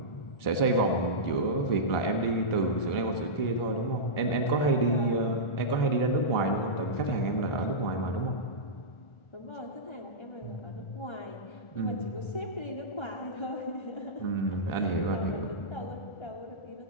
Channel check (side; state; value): right; late; 1.4 ms